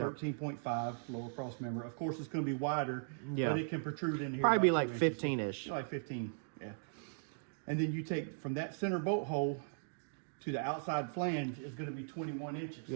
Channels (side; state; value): left; silent; digital silence